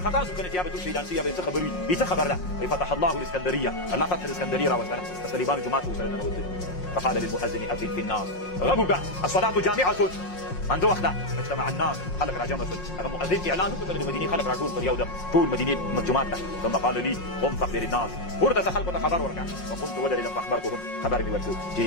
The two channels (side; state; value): right; late; 5.6 ms